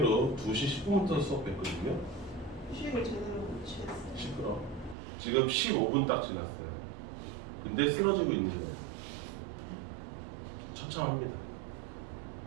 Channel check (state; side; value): drops out; left; at 5.0 s